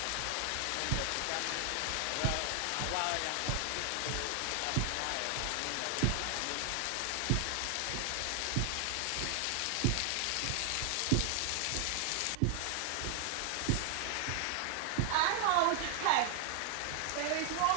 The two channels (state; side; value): different; both; correlation 0.00